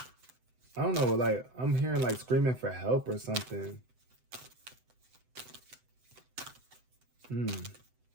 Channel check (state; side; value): late; left; 7.9 ms